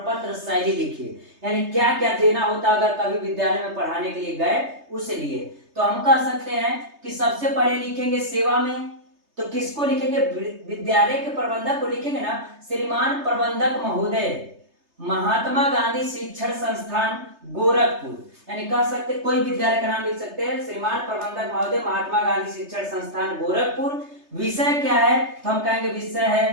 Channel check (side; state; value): left; late; 3.3 ms